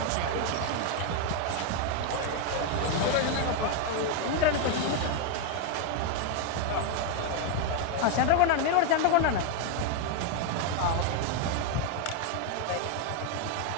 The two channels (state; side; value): different; both; correlation 0.01